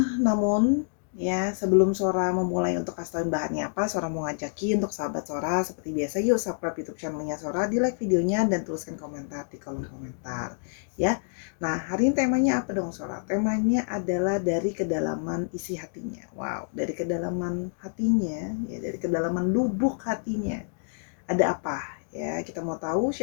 Namun ya, sebelum Sora memulai untuk kasih tauin bahannya apa, Sora mau ngajakin untuk sahabat Sora seperti biasa, yuk subscribe YouTube channelnya Sora, di like videonya dan tuliskan komentar di kolom komentar ya. Nah, hari ini temanya apa dong Sora? Temanya adalah dari kedalaman isi hatinya. Wow, dari kedalaman hatinya ya, dari kedalaman lubuk hatinya. Ada apa? Ya, kita mau tahu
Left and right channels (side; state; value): right; silent; digital silence